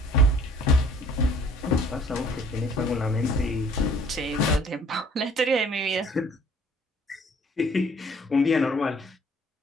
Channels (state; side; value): normal; both; correlation 0.55